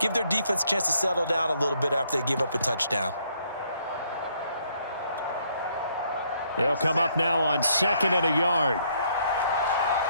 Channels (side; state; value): both; inverted; correlation -0.69